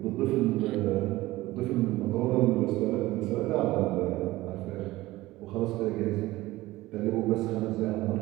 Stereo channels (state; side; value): quieter; left; 18.1 dB